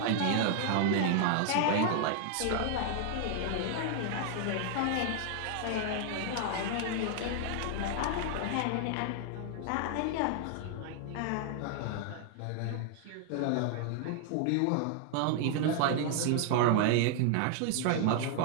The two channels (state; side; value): different; both; correlation 0.00